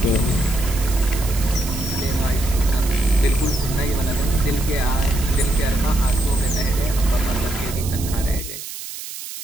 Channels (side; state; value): right; noise; hiss, 10 dB below the sound